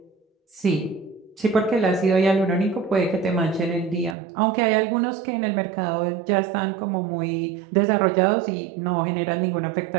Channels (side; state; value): left; drops out; at 4.2 s